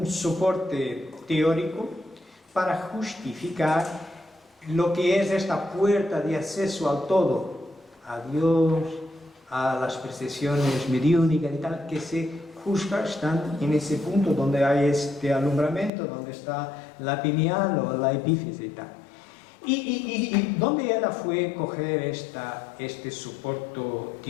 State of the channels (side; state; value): right; drops out; at 15.9 s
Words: soporte teórico para justificar lo que es esta puerta de acceso al todo, a Dios, a las percepciones mediúnicas y tal, que se juzga están en ese punto donde hay este alumbramiento, donde está la pineal o la epífisis y tal. Y ¿dónde ella fue coger este soporte